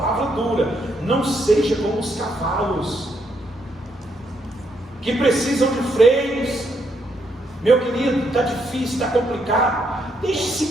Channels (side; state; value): both; normal; correlation 0.75